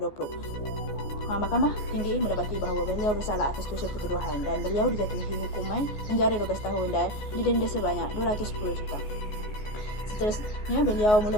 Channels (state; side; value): late; right; 14 ms